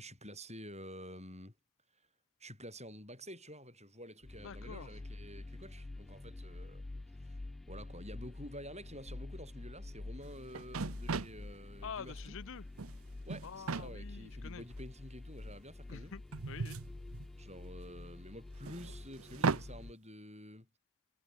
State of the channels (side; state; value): both; normal; correlation 0.37